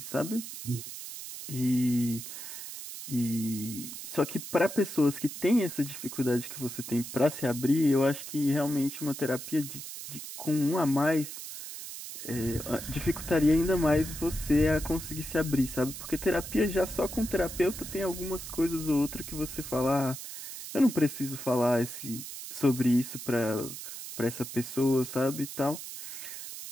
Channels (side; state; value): right; noise; hiss, 10 dB below the sound